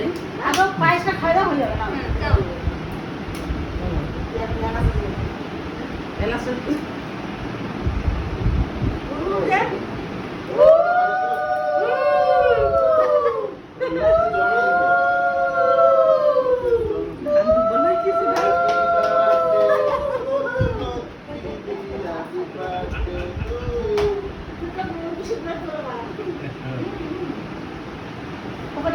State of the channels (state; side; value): identical; both; correlation 1.00